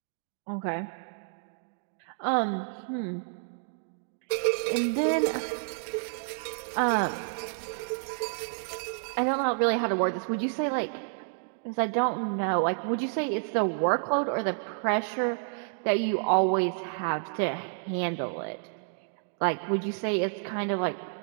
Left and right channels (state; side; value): silent; left; digital silence